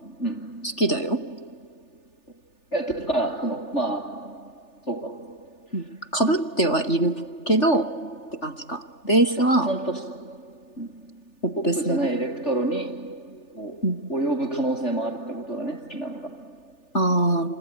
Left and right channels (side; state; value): right; late; 3.4 ms